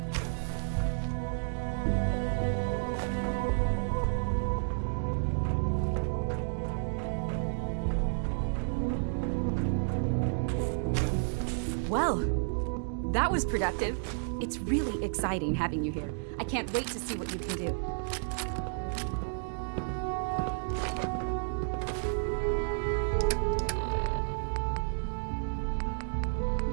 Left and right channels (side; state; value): left; silent; digital silence